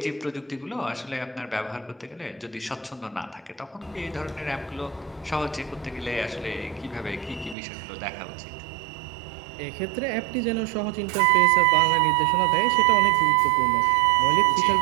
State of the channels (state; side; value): drops out; left; at 7.6 s